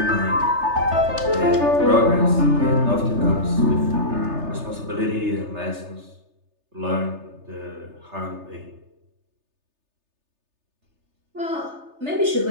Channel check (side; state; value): left; late; 3.3 ms